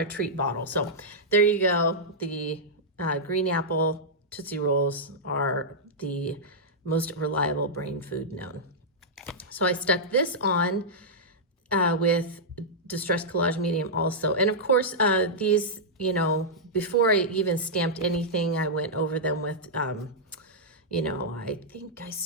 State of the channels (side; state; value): both; normal; correlation -0.09